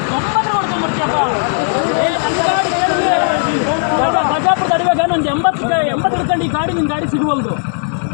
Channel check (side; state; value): right; silent; digital silence